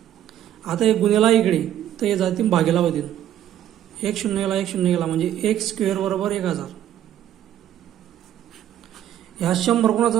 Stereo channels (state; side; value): quieter; left; 11.4 dB